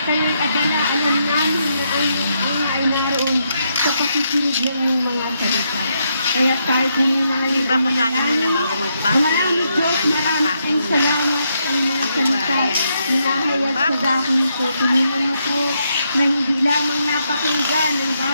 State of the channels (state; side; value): inverted; both; correlation -0.79